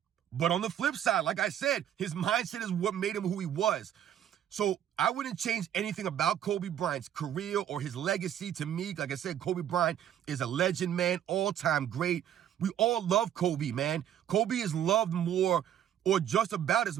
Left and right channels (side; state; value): left; quieter; 10.4 dB